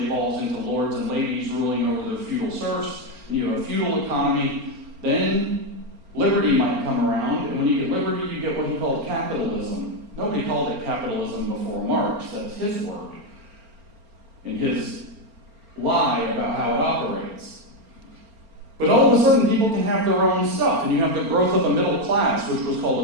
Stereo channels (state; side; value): late; left; 4.4 ms